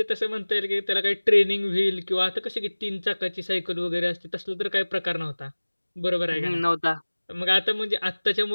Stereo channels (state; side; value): inverted; both; correlation -1.00